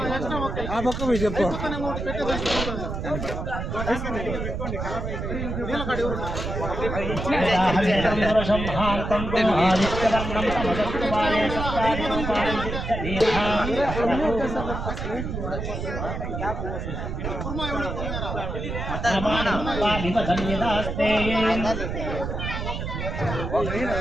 ఆ పక్క పోయి చెప్పు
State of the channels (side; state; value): right; noise; rumble, 4 dB below the sound